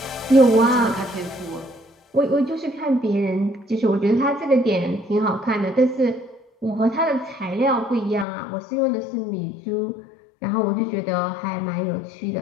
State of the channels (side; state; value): right; drops out; at 8.2 s